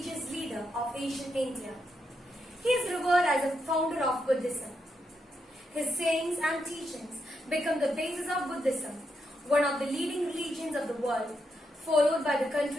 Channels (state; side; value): normal; both; correlation 0.82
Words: leader of ancient India. He is revered as a founder of Buddhism. His sayings and teachings become the basis of Buddhism, one of the leading religions of the world, followed by the